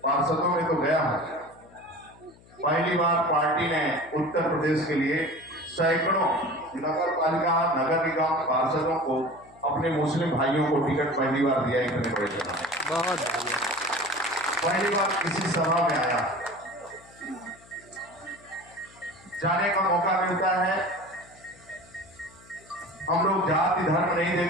पार्षदों में तो गया हूं, पहली बार पार्टी ने उत्तर प्रदेश के लिए सैकड़ों नगर पालिका नगर निगम पार्षदों को अपने मुस्लिम भाइयों को टिकट पहली बार दिया। इतने बड़े बहुत पहली बार किसी सभा में आया, जाने का मौका मिलता है। हम लोग जाति धर्म नहीं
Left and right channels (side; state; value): left; noise; hum, 25 dB below the sound